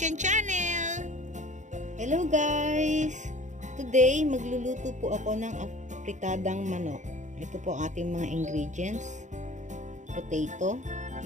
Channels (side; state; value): left; late; 0.35 ms